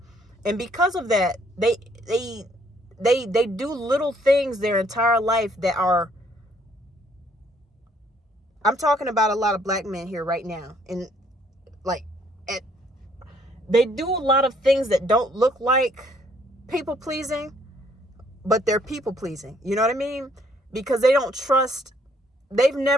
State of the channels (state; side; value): normal; both; correlation 0.65